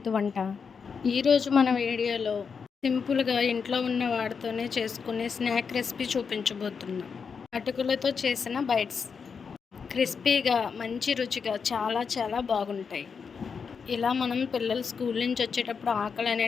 వంట. ఈరోజు మన వీడియోలో సింపుల్‌గా ఇంట్లో ఉన్న వాటితోనే చేసుకునే స్నాక్ రెసిపీ చూపించబోతున్నా. అటుకులతో చేసిన బైట్స్. క్రిస్పీగా, మంచి రుచిగా చాలా చాలా బాగుంటాయి. ఇలా మనం పిల్లలు స్కూల్ నుంచి వచ్చేటప్పుడు ఆకలి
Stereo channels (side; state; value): right; quieter; 5.9 dB